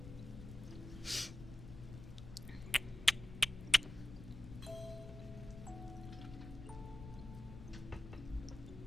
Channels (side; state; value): left; noise; rumble, 12 dB below the sound